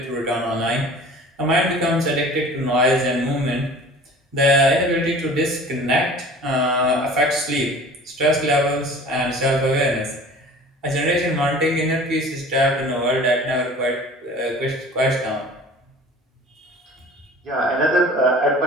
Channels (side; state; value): both; normal; correlation 0.44